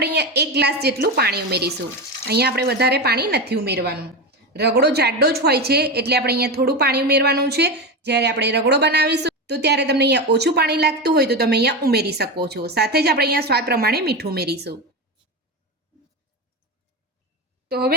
અહીંયા 1 ગ્લાસ જેટલું પાણી ઉમેરીશું। અહીંયા આપણે વધારે પાણી નથી ઉમેરવાનું। રગડો જાડો જ હોય છે એટલે આપણે અહીંયા થોડું પાણી ઉમેરવાનું છે। જ્યારે આપણે રગડો બનાવીશું તો ત્યારે તમને અહીંયા ઓછું પાણી લાગતું હોય તો તમે અહીંયા ઉમેરી શકો છો। સાથે જ આપણે અહીંયા સ્વાદ પ્રમાણે મીઠું ઉમેરીશું। તો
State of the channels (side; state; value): both; normal; correlation 0.18